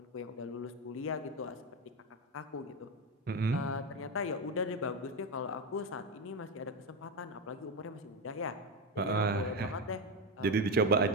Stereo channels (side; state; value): both; normal; correlation 0.12